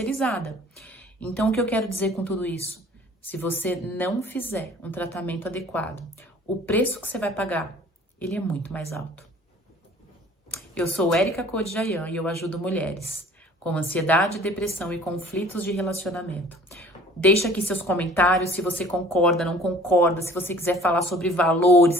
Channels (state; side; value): normal; both; correlation 0.50